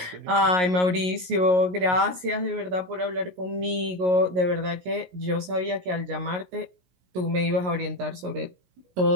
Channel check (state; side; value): late; left; 16 ms